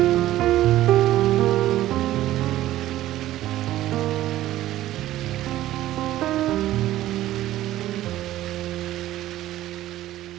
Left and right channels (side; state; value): left; quieter; 14.5 dB